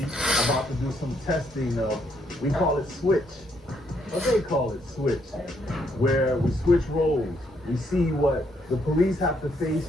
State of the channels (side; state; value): both; normal; correlation 0.73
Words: about to do some testing of, we call it switch. What they call it switch, where we switch roles. We see what the police have to face